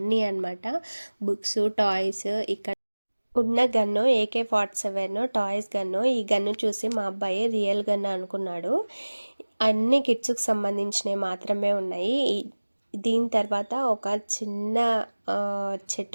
అనమాట. Books, toys. ఇక్కడ ఉన్న గన్ను AK-47 టాయ్స్ గన్ను. ఈ గన్ను చూసి మా అబ్బాయి రియల్ గన్ను అనుకున్నాడు. అన్ని కిడ్స్కి సంబంధించినవి మాత్రమే ఉన్నాయి. దీని తర్వాత ఒక చిన్న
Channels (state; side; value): inverted; both; correlation -1.00